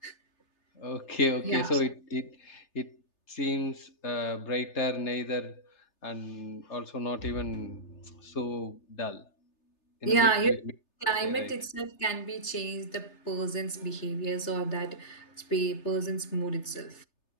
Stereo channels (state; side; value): late; right; 3.3 ms